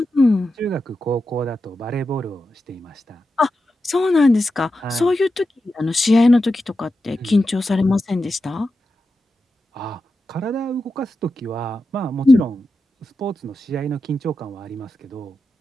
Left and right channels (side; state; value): both; normal; correlation 0.90